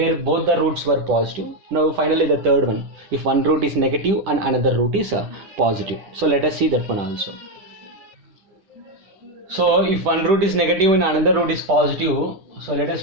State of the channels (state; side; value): late; left; 10 ms